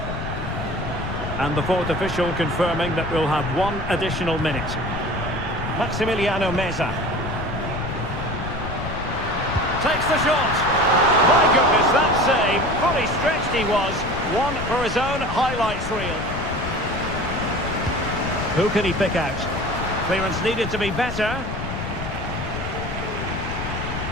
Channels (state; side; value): noise; left; rumble, 7 dB below the sound